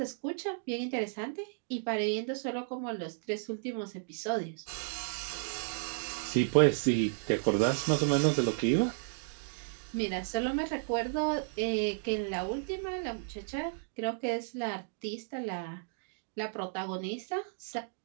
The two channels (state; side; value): silent; left; digital silence